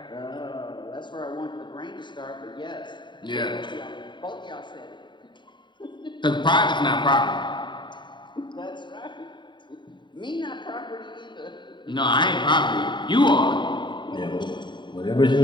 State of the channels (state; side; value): late; right; 0.23 ms